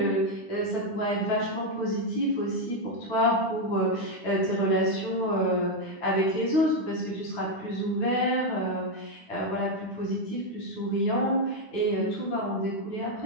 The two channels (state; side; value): late; right; 10 ms